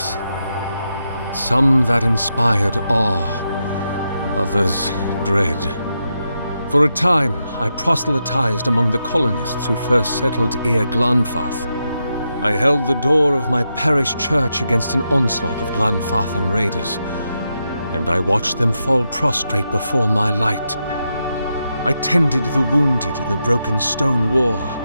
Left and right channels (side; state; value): both; inverted; correlation -0.85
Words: Some that inspired awe, others dread. For a time, I proselytized among the colonists who first settled Glanfath. I held the door of my parish church against an onslaught of Glanfathan raiders, and I watched them fall prostrate before my light. I tended the wounded in the Broken Stone War,